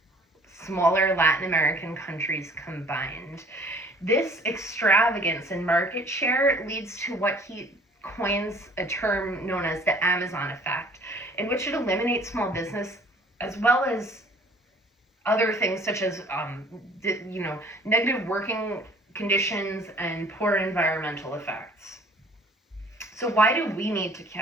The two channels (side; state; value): both; normal; correlation 0.53